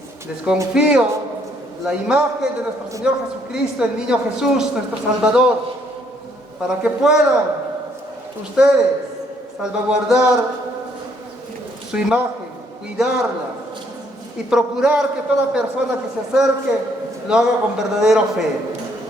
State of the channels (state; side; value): normal; both; correlation 0.68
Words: desconfío la imagen de nuestro Señor Jesucristo, el niño Jesús, nuestro Salvador, para que puedan ustedes salvaguardar su imagen, cuidarla y procurar que toda persona que se acerque lo haga con verdadera fe.